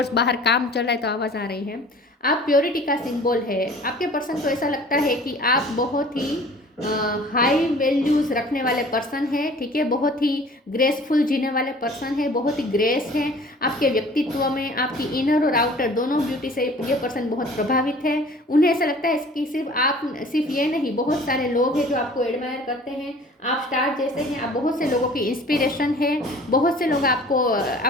बाहर काम चल रहा है तो आवाज़ आ रही है। आप प्योरिटी का सिंबल है। आपके पर्सन को ऐसा लगता है कि आप बहुत ही हाई वैल्यूज़ रखने वाले पर्सन है, ठीक है। बहुत ही ग्रेसफुल जीने वाले पर्सन है, बहुत ही ग्रेस है आपके व्यक्तित्व में। आपकी इनर और आउटर दोनों ब्यूटी से ये पर्सन बहुत प्रभावित है। उन्हें ऐसा लगता है कि सिर्फ ये नहीं, बहुत सारे लोग हैं जो आपको एडमायर करते हैं। आप स्टार जैसे हैं, आप बहुत से लोगों की इंस्पिरेशन है। बहुत से लोग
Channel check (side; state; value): both; normal; correlation 0.48